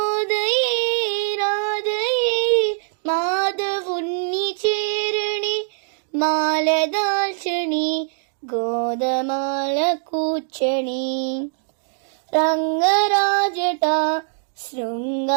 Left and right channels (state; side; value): silent; left; digital silence